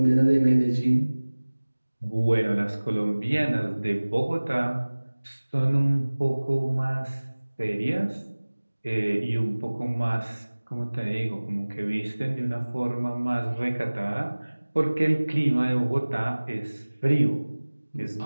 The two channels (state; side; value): inverted; both; correlation -1.00